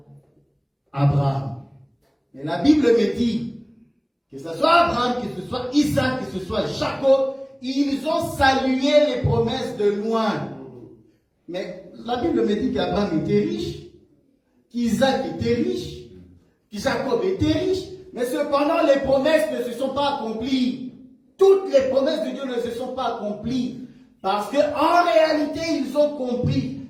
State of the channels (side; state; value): both; identical; correlation 1.00